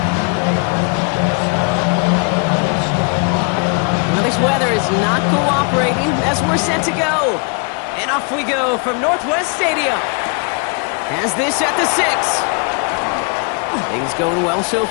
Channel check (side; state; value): right; quieter; 36.7 dB